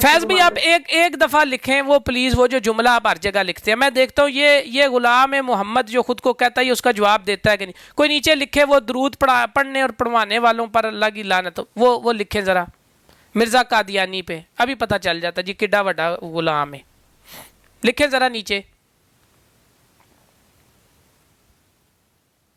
فیض بھی آپ ایک دفعہ لکھیں وہ پلیز، وہ جو جملہ آپ ہر جگہ لکھتے ہیں، میں دیکھتا ہوں یہ غلام محمد جو خود کو کہتا ہے یہ اس کا جواب دیتا ہے کہ نہیں. کوئی نیچے لکھے وہ درود پڑھنے اور پڑھوانے والوں پر اللہ کی لعنت، وہ لکھیں ذرا مرزا قادیانی پہ، ابھی پتہ چل جاتا جی کڈا وڈا غلام ہے. لکھیں ذرا نیچے.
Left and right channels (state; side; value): identical; both; correlation 1.00